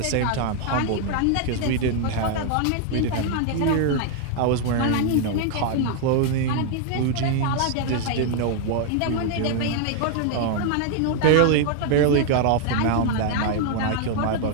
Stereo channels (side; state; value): both; different; correlation 0.00